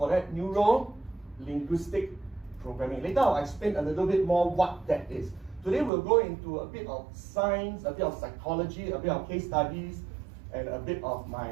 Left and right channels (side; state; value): left; drops out; at 5.9 s